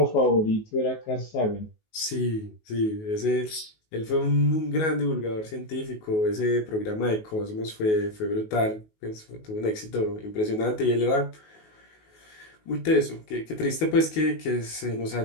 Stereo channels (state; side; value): late; right; 19 ms